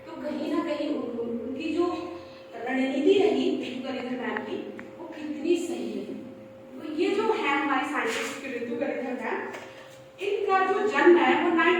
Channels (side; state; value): both; identical; correlation 1.00